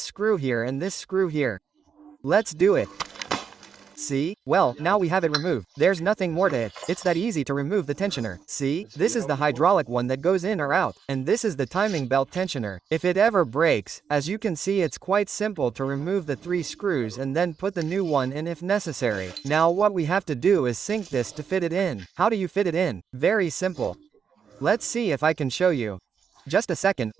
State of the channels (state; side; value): quieter; left; 6.9 dB